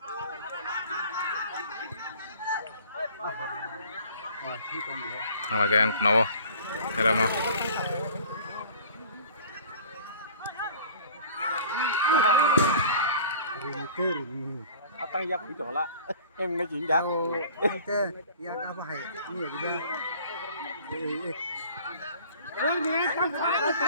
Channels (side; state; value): both; inverted; correlation -0.47